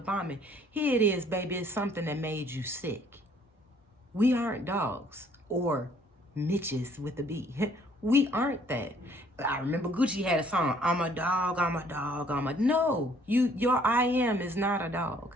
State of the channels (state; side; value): normal; both; correlation 0.61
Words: Here it is, baby. It's something that made you sick. We aren't dogs or Mitches with a B. We aren't that. I remember Gucci had a song, I'm a dog, I'm a dog, no, your I am is not a dog.